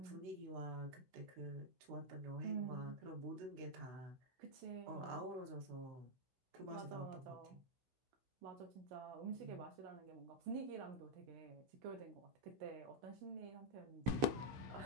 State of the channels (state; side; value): late; left; 15 ms